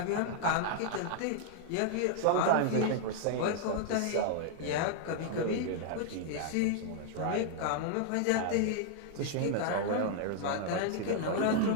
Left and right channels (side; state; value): both; different; correlation 0.00